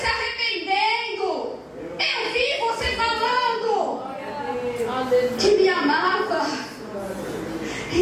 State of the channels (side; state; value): both; identical; correlation 1.00